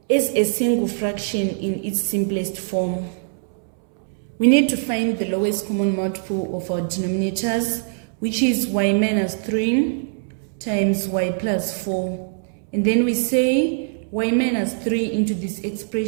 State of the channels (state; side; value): silent; left; 64 dB below the other